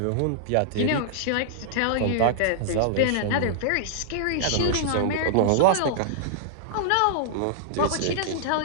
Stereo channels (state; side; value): different; both; correlation -0.01